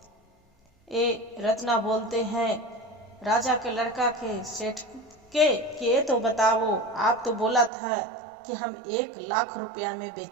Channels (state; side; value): drops out; left; at 7.7 s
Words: ये रत्ना बोलते हैं राजा के लड़का के सेठ के कि ये तो बताओ, आप तो बोला था कि हम 1 लाख रुपया में